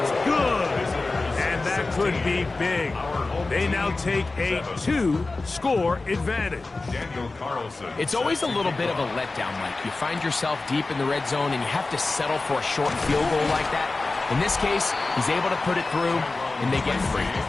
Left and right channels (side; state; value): right; quieter; 3.5 dB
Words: good. And that could be big. They now take a 2-score advantage. Daniel Carlson. It's always a little bit of a letdown, Mike. You find yourself deep in the red zone and you have to settle for a short field goal like that. In this case, he's able to put it through, and they get free.